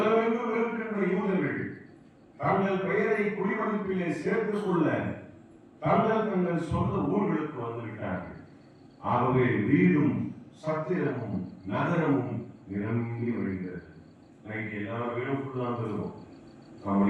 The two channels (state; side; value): identical; both; correlation 1.00